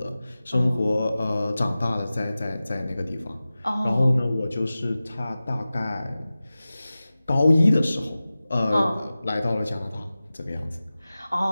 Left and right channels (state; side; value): inverted; both; correlation -0.96